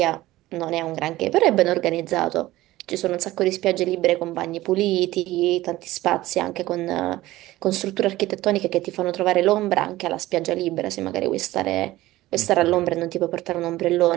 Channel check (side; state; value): left; quieter; 16.9 dB